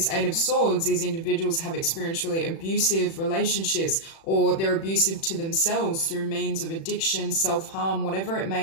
Eight of Swords, these individuals have experienced really abusive relationships, or they're abusive to themselves through means of addiction, self-harm, whatever it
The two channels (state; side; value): late; right; 36 ms